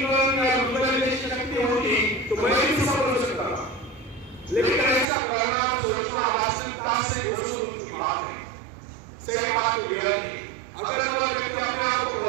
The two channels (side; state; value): left; drops out; at 5.1 s